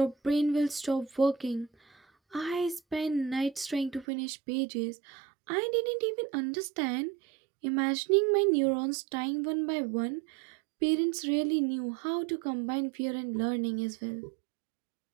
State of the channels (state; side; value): drops out; left; at 4.0 s